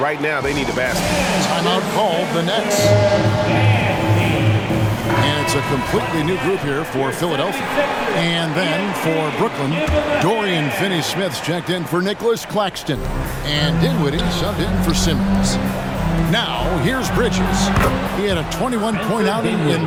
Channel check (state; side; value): identical; both; correlation 1.00